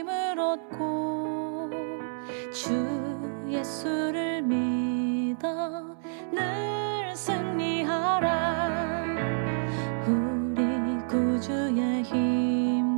얻고 주 예수를 믿어 늘 승리하라. 우리 구주의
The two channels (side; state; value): left; silent; 59 dB below the other